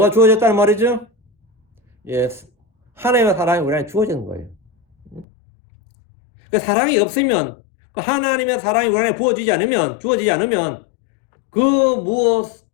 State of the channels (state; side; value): drops out; right; at 5.2 s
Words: 주어졌다는 말이죠? 예, 하나님의 사랑이 우리한테 주어지는 거예요. 그 사랑이 없으면, 그 하나님의 사랑이 우리한테 주어지지 않으면 그